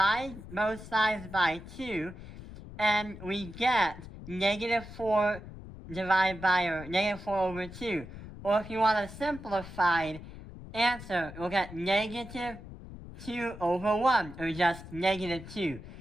both sides by 2, and we get negative 4 divided by, or negative 4 over 2. Or if you want a simplified answer, we'll get negative 2 over 1, or just negative 2.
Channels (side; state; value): left; noise; rumble, 14 dB below the sound